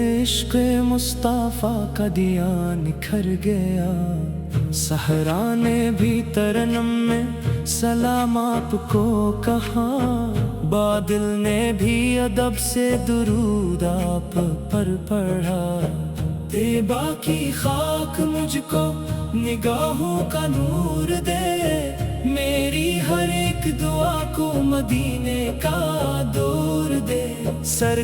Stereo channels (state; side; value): identical; both; correlation 1.00